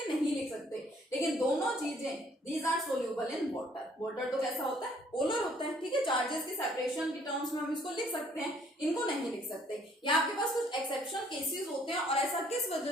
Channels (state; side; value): normal; both; correlation 0.62